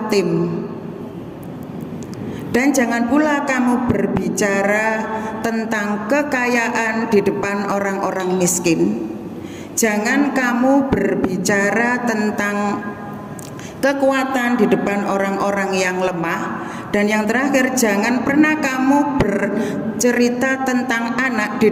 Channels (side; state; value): both; identical; correlation 1.00